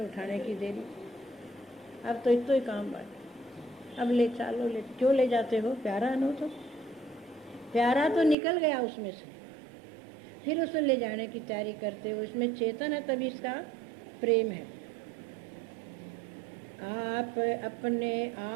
की देरी, अब तो इतना ही काम बात, अब ले चलो। ले क्यों ले जाते हो? प्यारा नो तो प्यारा तो निकल गया उसमें से, फिर उसे ले जाने की तैयारी करते हो। इसमें चेतन है तभी इसका प्रेम है। आप अपने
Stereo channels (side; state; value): left; drops out; at 8.3 s